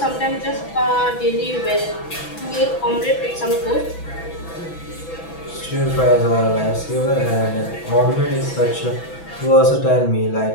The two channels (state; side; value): late; right; 6.0 ms